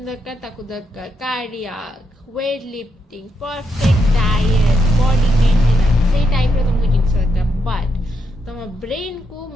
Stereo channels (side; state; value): both; normal; correlation 0.81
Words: दरकार ताकू दरकार cardiac weight lifting perfect diet body maintenance से टाइप रो तुमको जिंस दरकार बट तुम ब्रेन को